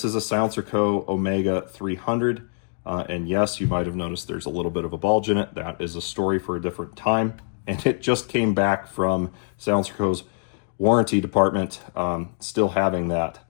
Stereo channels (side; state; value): right; silent; digital silence